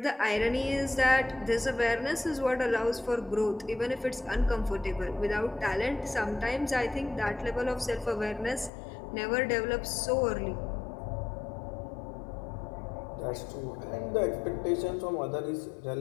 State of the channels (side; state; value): right; drops out; at 8.7 s